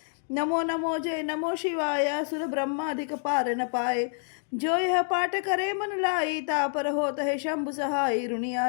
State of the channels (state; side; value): silent; right; digital silence